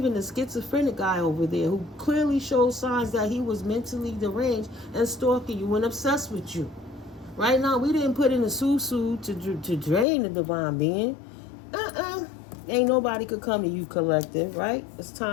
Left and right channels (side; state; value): right; drops out; at 10.1 s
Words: the schizophrenic guy over there who clearly showed signs that he was mentally deranged and stalking you and obsessed with you. Right now, we didn't put in a susu to drain the divine being. Ain't nobody could come to you, collective, right? It's